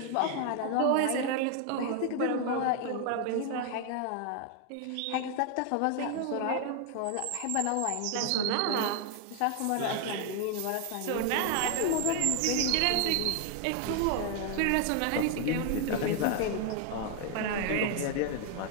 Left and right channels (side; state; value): both; different; correlation 0.00